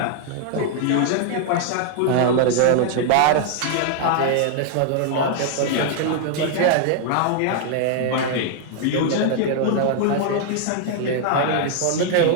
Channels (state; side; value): different; both; correlation 0.00